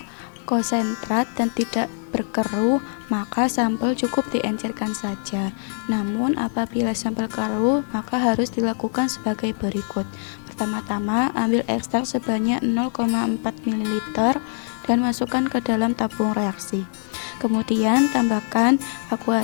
konsentrat dan tidak berkeruh, maka sampel cukup diencerkan saja. Namun apabila sampel keruh, maka harus dilakukan sebagai berikut. Pertama-tama, ambil ekstrak sebanyak 0,4 ml dan masukkan ke dalam tabung reaksi. Kemudian tambahkan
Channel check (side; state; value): right; silent; digital silence